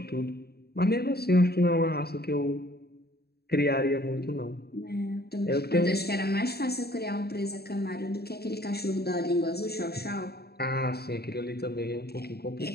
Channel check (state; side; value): late; right; 0.46 ms